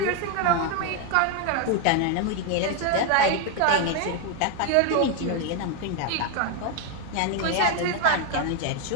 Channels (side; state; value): both; different; correlation 0.01